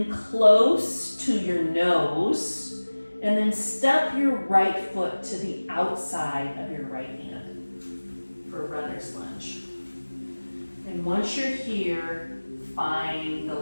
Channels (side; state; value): both; inverted; correlation -1.00